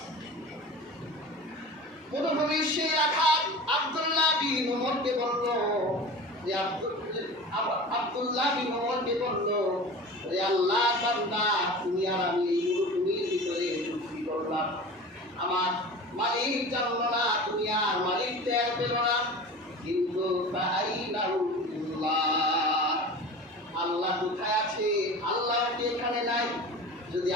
মরুভূমির সেই রাখাল আব্দুল্লাহ বিন উমরকে বলল যে আব্দুল্লাহ বিন উমরকে বলল যে আল্লাহ বান্দা, তুমি আর আমি এই মরুভূমির ভিতরে চুক্তি করলাম, আমার মালিক জানলো না, তুমি আর মালিক টের পেল না, কিন্তু আল্লাহ কোথায় আছে? আল্লাহ কি এখানে নাই? যদি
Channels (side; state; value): both; normal; correlation 0.35